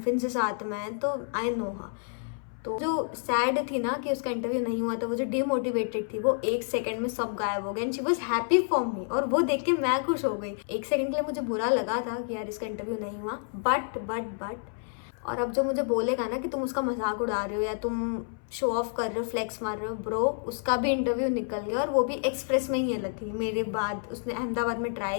से साथ में हैं, तो आई नो हाँ। तो जो सैड थी ना कि उसका इंटरव्यू नहीं हुआ था, वो जो डिमोटिवेटेड थी, वो 1 सेकंड में सब गायब हो गए, and she was happy for me. और वो देख के मैं खुश हो गई। 1 सेकंड के लिए मुझे बुरा लगा था कि यार इसका इंटरव्यू नहीं हुआ, बट और अब जो मुझे बोलेगा ना कि तुम उसका मजाक उड़ा रहे हो या तुम शो ऑफ कर रहे हो, फ्लेक्स मार रहे हो, ब्रो, उसका भी इंटरव्यू निकल गया, और वो भी एक्सप्रेस में ही है लकी। मेरे बाद उसने अहमदाबाद में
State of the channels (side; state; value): right; silent; 59 dB below the other